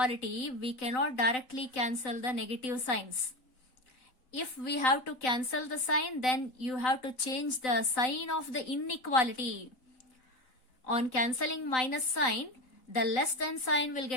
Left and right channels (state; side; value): late; right; 3.9 ms